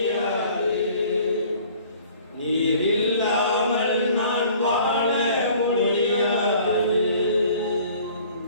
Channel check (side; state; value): both; inverted; correlation -0.52